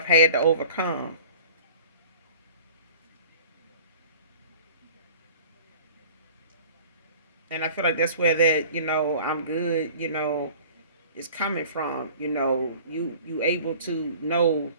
had to overcome. And I feel like that's where that, I'm good, is coming from. You able to know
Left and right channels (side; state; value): both; inverted; correlation -0.45